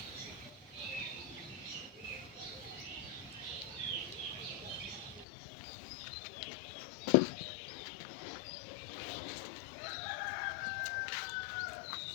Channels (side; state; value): right; drops out; at 5.2 s